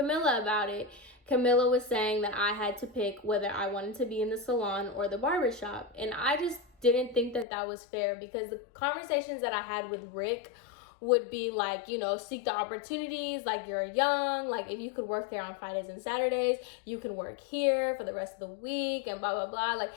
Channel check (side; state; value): right; drops out; at 7.5 s